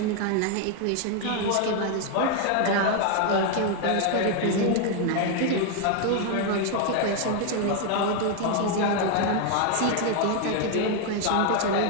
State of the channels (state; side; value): different; both; correlation 0.00